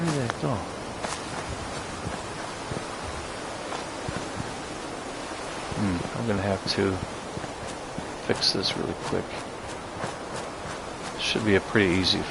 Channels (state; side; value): identical; both; correlation 1.00